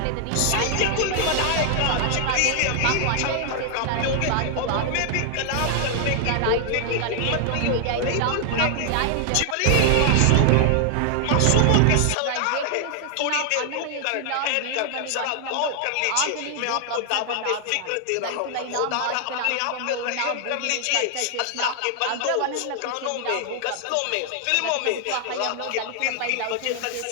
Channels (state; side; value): different; both; correlation 0.00